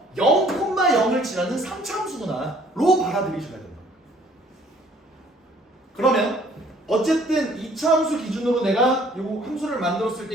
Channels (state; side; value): normal; both; correlation 0.58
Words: 0,0을 지나는 3차 함수구나 로 받아들이셔야 된다. 그러면 어쨌든 2차 함수 기준으로 내가 이 함수를 만들었을